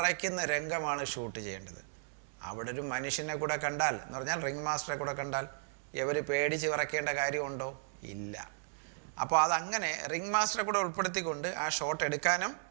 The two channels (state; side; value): silent; left; digital silence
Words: രംഗമാണ് ഷൂട്ട് ചെയ്യേണ്ടത്. അവിടെ ഒരു മനുഷ്യനെ കൂടെ കണ്ടാൽ എന്ന് പറഞ്ഞാൽ റിംഗ് മാസ്റ്ററെ കൂടെ കണ്ടാൽ ഇവർ പേടിച്ച് വിറയ്ക്കേണ്ട കാര്യമുണ്ടോ? ഇല്ല. അപ്പോൾ അതങ്ങനെ റിംഗ് മാസ്റ്ററെ കൂടെ ഉൾപ്പെടുത്തിക്കൊണ്ട് ആ ഷോട്ട് എടുക്കാനും